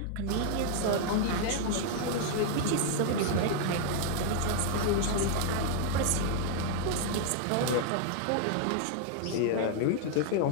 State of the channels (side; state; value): both; different; correlation 0.00